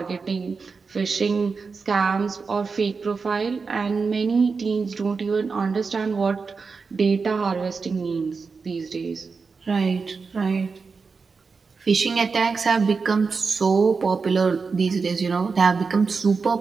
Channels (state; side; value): quieter; left; 4.8 dB